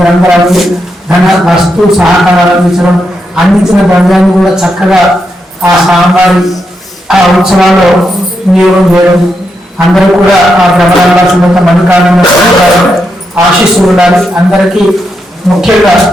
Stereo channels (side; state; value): both; normal; correlation 0.83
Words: ధన వస్తు సహకారాలు అందించిన ద్రవ్యాన్ని కూడా చక్కగా ఆ స్వామివారి ఆ ఉత్సవాల్లో వినియోగం చేయడం, అందరూ కూడా ఆ భ్రమరాంబ సుమంత మల్లికార్జున ఆశీస్సులు ఉండాలి. అందరికీ ముఖ్యంగా